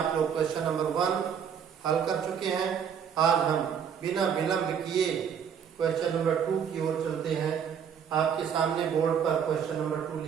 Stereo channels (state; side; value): quieter; left; 7.8 dB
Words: लोग क्वेश्चन नंबर 1 हल कर चुके हैं। आज हम बिना विलंब किए क्वेश्चन नंबर 2 की ओर चलते हैं। आपके सामने बोर्ड पर क्वेश्चन नंबर 2